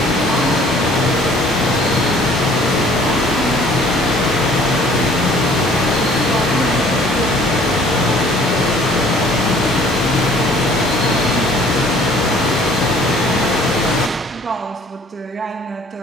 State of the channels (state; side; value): normal; both; correlation 0.55